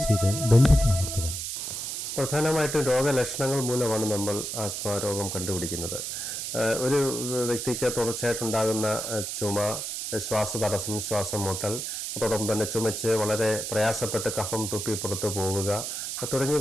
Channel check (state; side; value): noise; right; hiss, 4 dB below the sound